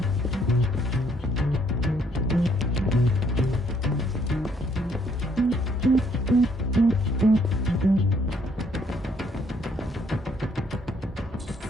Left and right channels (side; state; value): both; normal; correlation 0.67